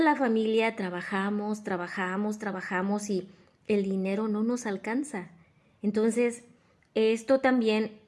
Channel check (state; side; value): identical; both; correlation 1.00